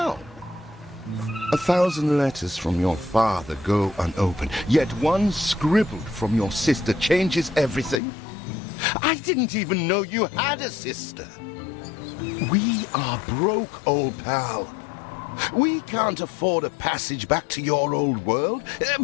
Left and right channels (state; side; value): drops out; right; at 8.0 s